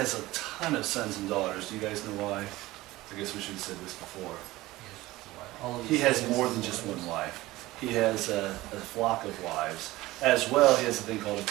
a ton of sons and daughters. Do you guys know why? I guess we should have said this before. He has more than just one wife. He has a flock of wives. As well, he has a thing called a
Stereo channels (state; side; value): quieter; left; 18.2 dB